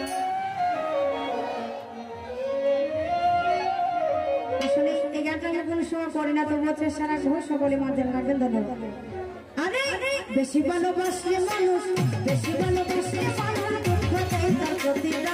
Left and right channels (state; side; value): identical; both; correlation 1.00